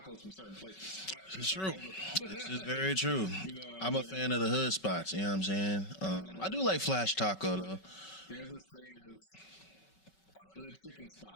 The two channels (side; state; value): right; late; 5.3 ms